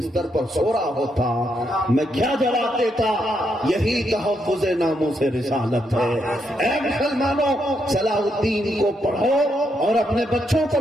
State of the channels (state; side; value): normal; both; correlation 0.79